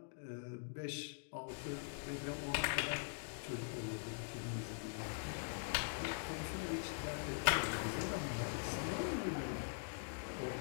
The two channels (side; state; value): right; silent; digital silence